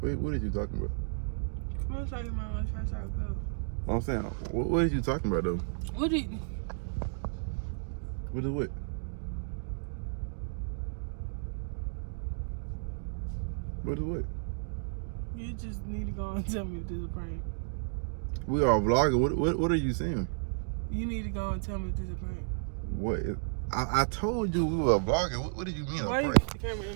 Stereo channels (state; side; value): silent; left; digital silence